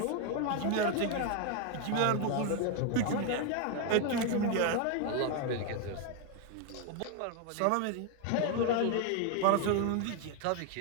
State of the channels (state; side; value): different; both; correlation 0.01